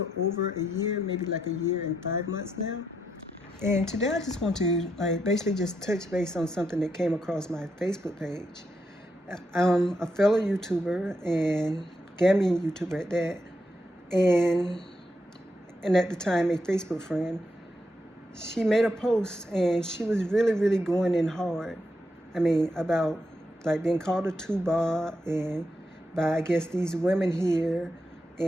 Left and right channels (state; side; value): normal; both; correlation 0.82